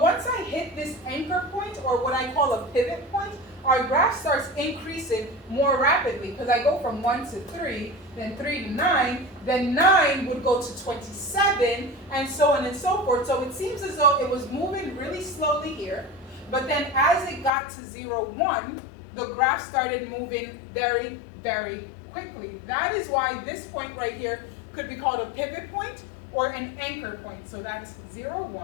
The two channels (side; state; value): right; drops out; at 17.5 s